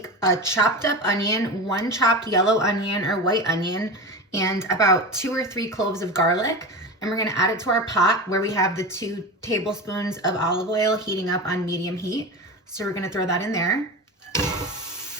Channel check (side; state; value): both; normal; correlation 0.26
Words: a chopped up onion, 1 chopped yellow onion or white onion, and about 2 or 3 cloves of garlic. And we're gonna add it to our pot where we have the 2 tablespoons of olive oil heating up on medium heat. So we're gonna throw that in there.